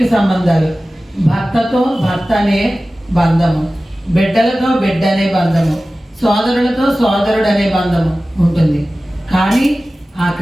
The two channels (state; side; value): normal; both; correlation 0.96